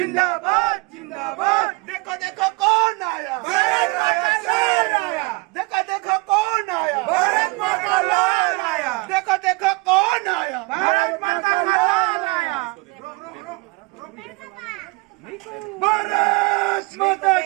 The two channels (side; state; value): left; quieter; 26.9 dB